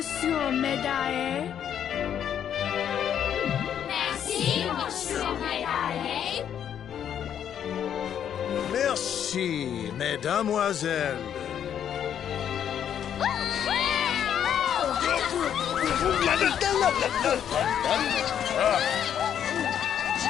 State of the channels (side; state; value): right; quieter; 9.3 dB